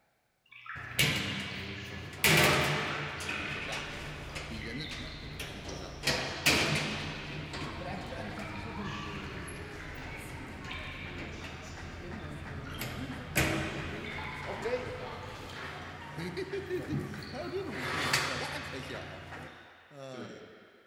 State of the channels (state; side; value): identical; both; correlation 1.00